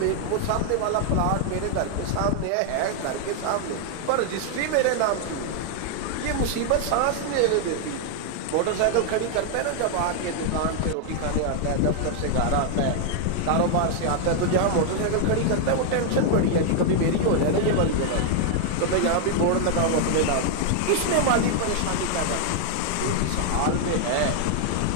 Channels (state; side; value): different; both; correlation 0.00